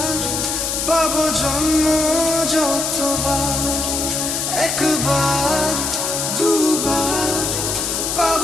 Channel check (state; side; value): noise; left; hiss, 1 dB below the sound